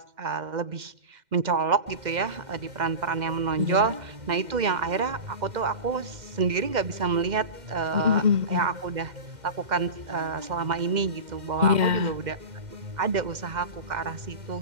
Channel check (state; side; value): late; left; 2.1 ms